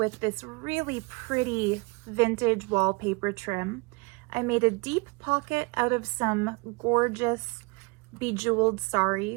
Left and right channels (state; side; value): quieter; left; 28.6 dB